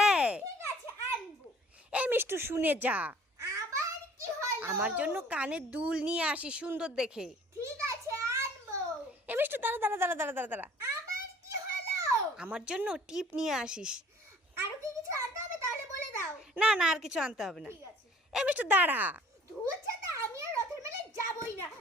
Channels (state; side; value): normal; both; correlation 0.53